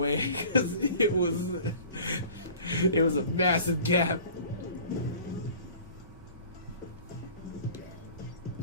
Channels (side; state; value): both; inverted; correlation -0.45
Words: because it was a massive gap.